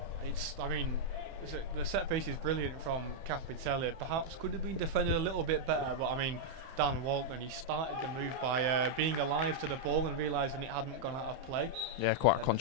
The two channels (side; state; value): left; late; 31 ms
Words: The set piece is brilliant from Capitelli. Perhaps could have been defended a little bit better, but I mean, Dan Walton, he started the move by being alive to the ball and realising it hadn't gone out of play. Yeah, quite a